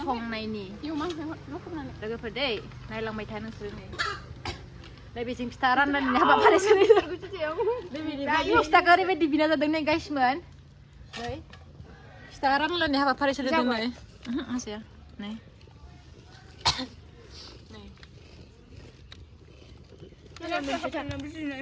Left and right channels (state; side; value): identical; both; correlation 1.00